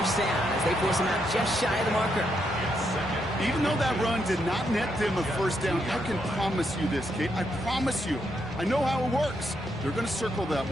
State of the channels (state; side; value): normal; both; correlation 0.79